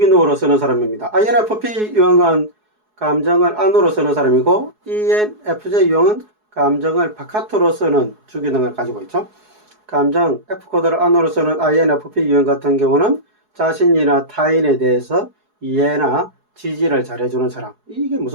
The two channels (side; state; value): left; late; 4.7 ms